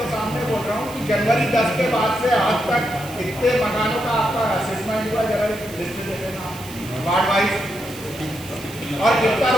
सामने बोल रहा हूँ कि जनवरी 10 के बाद से आज तक कितने मकानों का आपका असेसमेंट हुआ, जरा लिस्ट दे देना वार्ड वाइज, और कितना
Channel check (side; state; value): right; noise; hiss, 16 dB below the sound